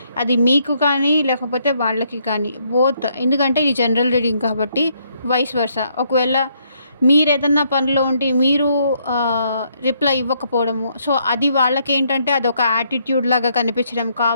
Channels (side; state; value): both; inverted; correlation -0.72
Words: అది మీకు కానీ, లేకపోతే వాళ్ళకి కానీ బోత్. ఎందుకంటే ఇది జనరల్ రీడింగ్ కాబట్టి వైస్ వర్సా. ఒకవేళ మీరేదన్నా పనిలో ఉండి మీరు రిప్లై ఇవ్వకపోవడము, సో అది వాళ్ళకేంటంటే అదొక యాటిట్యూడ్ లాగా కనిపించడం,